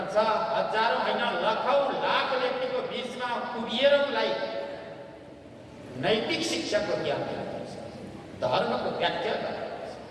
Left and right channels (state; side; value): identical; both; correlation 1.00